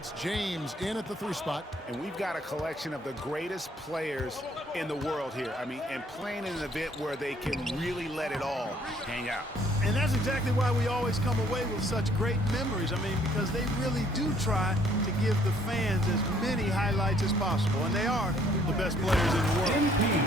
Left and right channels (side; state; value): both; normal; correlation 0.62